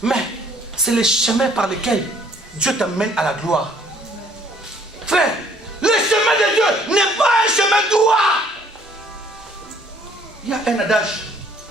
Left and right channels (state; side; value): normal; both; correlation 0.60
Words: Mais c'est le chemin par lequel Dieu t'amène à la gloire. Frère, le chemin de Dieu n'est pas un chemin droit. Il y a un adage